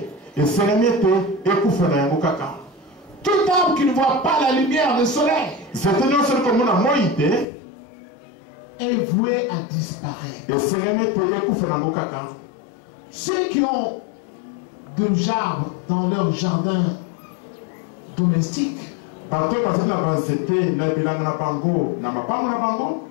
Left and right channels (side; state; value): right; drops out; at 7.5 s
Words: Tout arbre qui ne voit pas la lumière du soleil est voué à disparaître. Ceux qui ont des arbres dans leur jardin domestique,